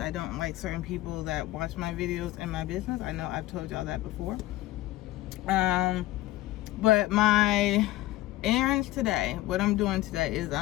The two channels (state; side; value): quieter; right; 16.9 dB